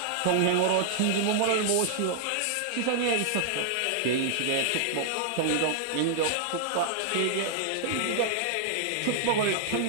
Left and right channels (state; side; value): different; both; correlation -0.01